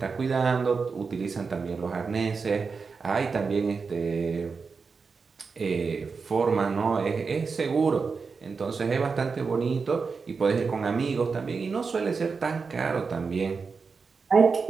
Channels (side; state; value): left; quieter; 4.9 dB